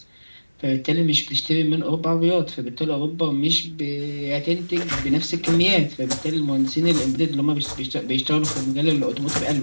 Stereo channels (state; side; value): inverted; both; correlation -1.00